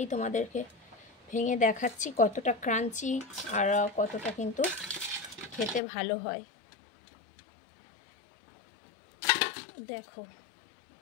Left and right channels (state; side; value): drops out; right; at 5.8 s